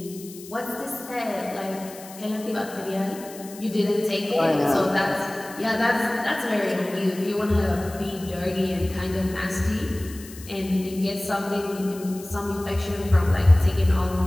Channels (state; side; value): noise; left; hiss, 17 dB below the sound